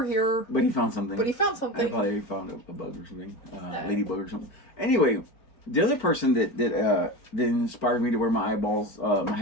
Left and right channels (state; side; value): late; right; 4.5 ms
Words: here. But he found something. I probably found a bug or something, ladybug or something. Anyway, The other person that inspired me to wear my eyeballs, my